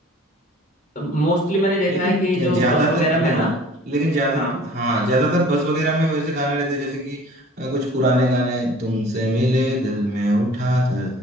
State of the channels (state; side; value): normal; both; correlation 0.49